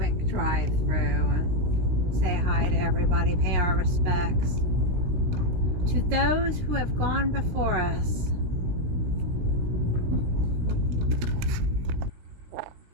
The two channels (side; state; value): left; late; 17 ms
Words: drive through and say hi to everybody, pay our respects to those who have gone before us.